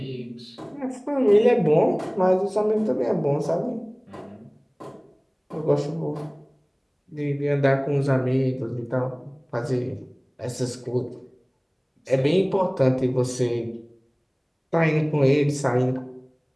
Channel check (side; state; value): both; identical; correlation 1.00